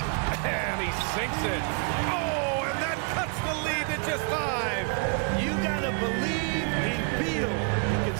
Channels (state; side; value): quieter; left; 39.9 dB